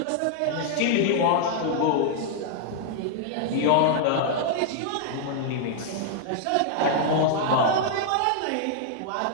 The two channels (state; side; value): different; both; correlation -0.01